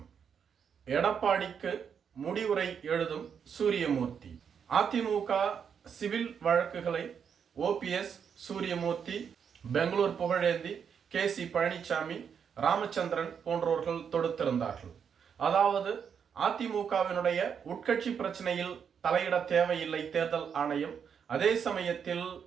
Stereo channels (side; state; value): left; quieter; 7.3 dB